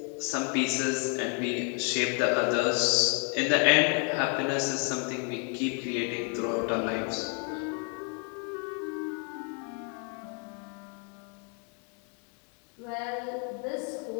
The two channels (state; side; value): quieter; right; 39.4 dB